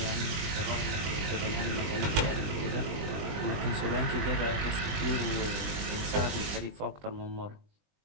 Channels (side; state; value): left; late; 20 ms